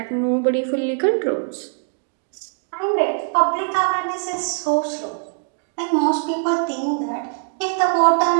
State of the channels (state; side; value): silent; left; 64 dB below the other